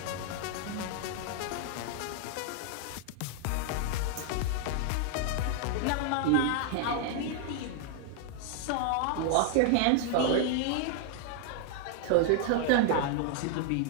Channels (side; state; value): both; different; correlation 0.00